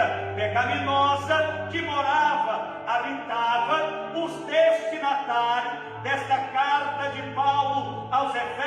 pecaminosa, que morava, habitava os destinatários desta carta de Paulo aos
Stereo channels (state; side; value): identical; both; correlation 1.00